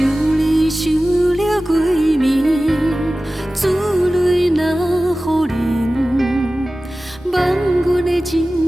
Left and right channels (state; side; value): normal; both; correlation 0.96